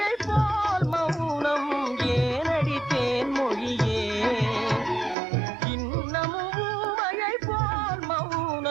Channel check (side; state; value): left; drops out; at 5.2 s